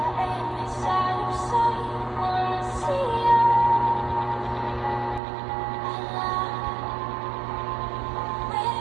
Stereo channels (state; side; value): drops out; left; at 5.2 s